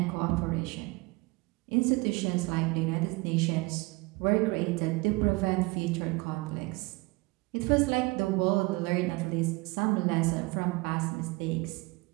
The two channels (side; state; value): left; quieter; 24.6 dB